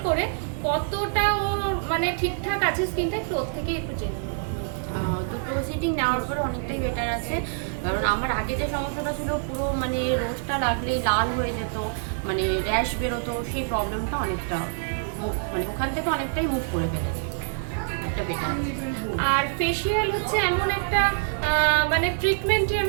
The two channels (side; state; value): left; silent; digital silence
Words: করে কতটা ও মানে ঠিকঠাক আছে স্কিনটা, একটু ওর থেকেই একটু জেনে নেবো। দুটো সিটিং নেওয়ার পরে অনেকটাই বেটার আছে। কারণ আমার আগে যে সমস্যাটা ছিল, পুরো মানে রোজটা লাগলেই লাল হয়ে যেত, মানে র্যাশ বেরোতো, সেই প্রবলেমটা অনেকটা মানে ওখান থেকে অনেকটাই মুভ করে ফেলেছে, একটা বেটার। আর ফেসিয়াল হচ্ছে এমন একটা মানে ট্রিটমেন্টই